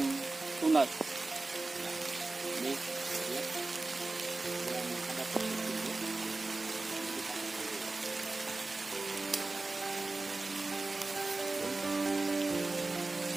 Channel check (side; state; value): left; quieter; 3.3 dB